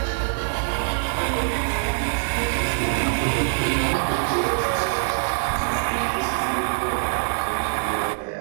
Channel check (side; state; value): left; silent; digital silence